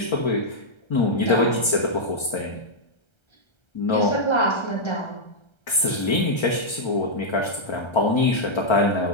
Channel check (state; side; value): late; right; 1.3 ms